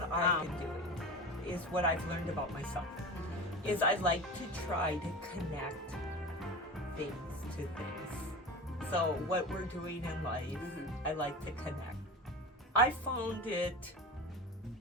I've been doing is what I've learned about myself. Is I like to try to connect things to things. So what we're doing in life, I like to connect. I found it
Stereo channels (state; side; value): normal; both; correlation 0.30